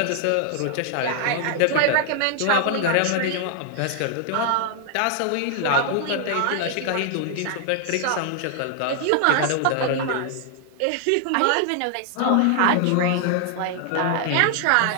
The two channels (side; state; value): both; different; correlation 0.00